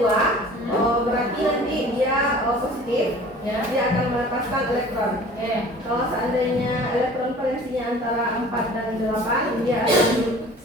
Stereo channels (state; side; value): normal; both; correlation 0.46